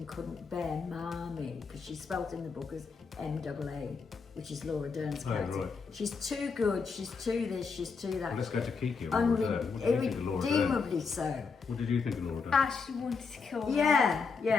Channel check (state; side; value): quieter; right; 5.1 dB